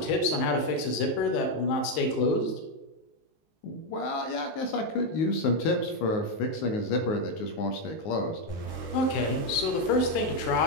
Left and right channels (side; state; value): right; late; 19 ms